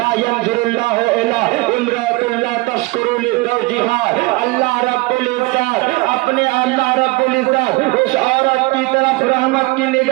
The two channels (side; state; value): left; quieter; 22.7 dB